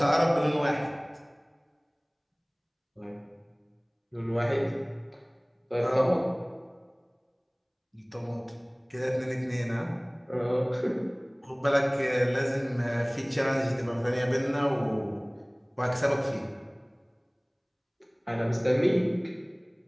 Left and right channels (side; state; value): both; identical; correlation 1.00